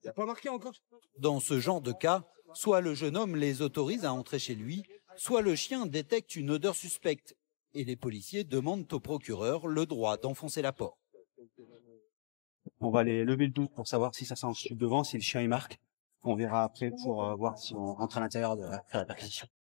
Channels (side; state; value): right; silent; digital silence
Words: Y a pas marqué encore. Dans ce genre de cas, soit le jeune homme les autorise à entrer chez lui, soit le chien détecte une odeur suspecte et les policiers demandent au procureur le droit d'enfoncer la porte. On va aller lever le doute pour savoir si ça sent le devant, si le chien il marque. On verra après pour voir si on rentre à l'intérieur de faire la perquisition.